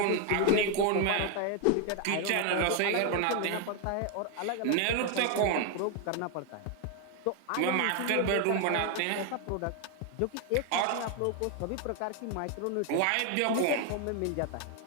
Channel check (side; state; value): both; different; correlation 0.01